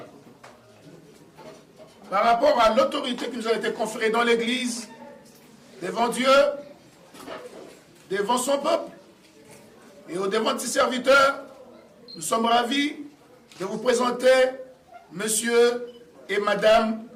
par rapport à l'autorité qui nous a été conférée dans l'Église, devant Dieu, devant son peuple et au devant de ses serviteurs, nous sommes ravis de vous présenter Monsieur et Madame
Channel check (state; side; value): identical; both; correlation 1.00